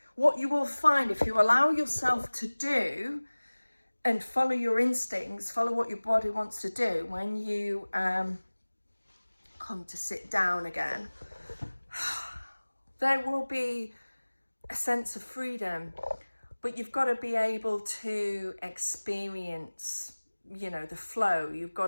what you will find, if you allow yourself to do and follow your instincts, follow what your body wants to do, when you come to sit down again, there will be a sense of freedom, but you've got to be able to experience, the flow. You've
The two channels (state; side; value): inverted; both; correlation -1.00